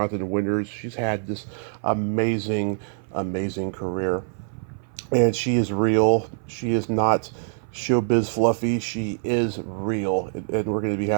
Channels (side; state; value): left; silent; 59 dB below the other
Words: Winters. She's had this amazing, amazing career. And she is real. She is not showbiz fluffy. She is real. And we're going to be